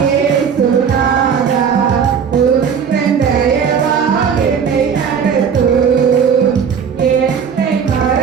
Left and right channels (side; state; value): left; quieter; 7.0 dB